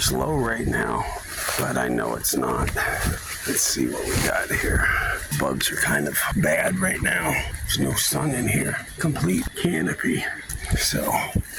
low right now. But I know it's not. Let's see what we got here. Bugs are kind of bad right now. There's no sun in here. Complete canopy. So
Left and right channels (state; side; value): identical; both; correlation 1.00